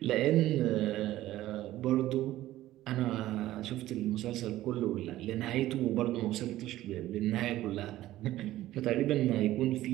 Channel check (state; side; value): quieter; left; 15.0 dB